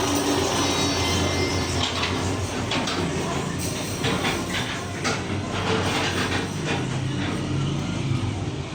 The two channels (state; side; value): identical; both; correlation 1.00